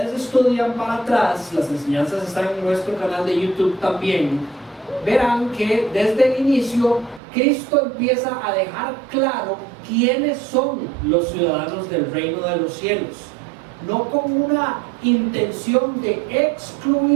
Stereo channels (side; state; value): left; drops out; at 7.2 s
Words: estudian para atrás, las enseñanzas están en nuestro canal de YouTube también, verán que desde el inicio Cristo empieza a dejar claro quiénes son los ciudadanos del reino de los cielos, no con una intención de